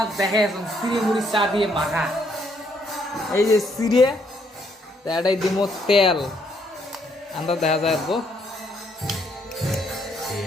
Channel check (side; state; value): both; normal; correlation 0.71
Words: দেখে এখন সিরে মুড়ি চা দিয়ে মাখা। এই যে সিরে, তো এটাই দিব তেল। আমরা দেখা যায় গো